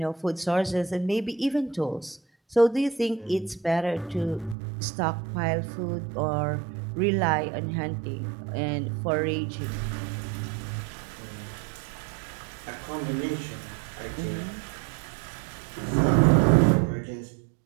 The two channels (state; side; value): drops out; left; at 4.5 s